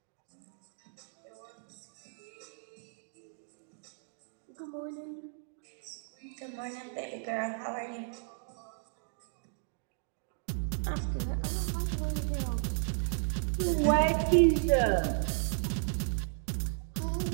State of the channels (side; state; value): left; silent; digital silence